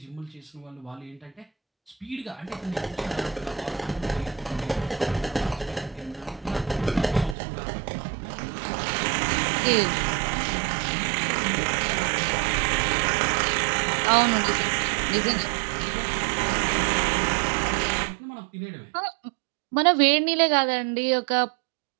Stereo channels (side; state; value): left; drops out; at 7.4 s